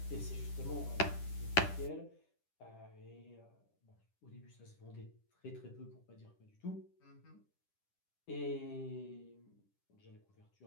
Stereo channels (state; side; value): late; right; 10 ms